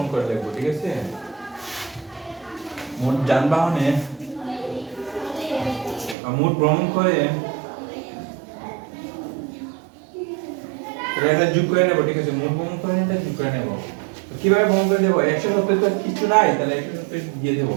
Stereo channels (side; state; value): left; drops out; at 6.2 s